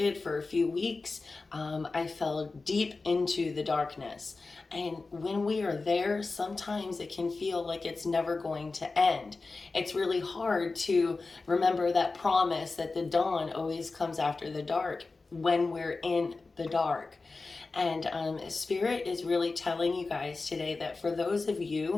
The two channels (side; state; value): right; quieter; 3.8 dB